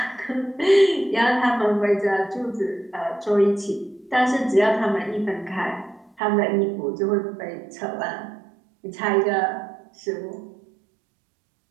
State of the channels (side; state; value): left; drops out; at 6.2 s